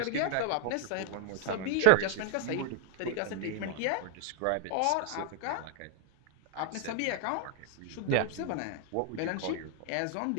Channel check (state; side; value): different; both; correlation 0.00